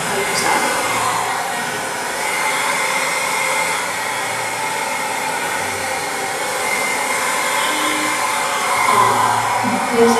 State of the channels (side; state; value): both; identical; correlation 1.00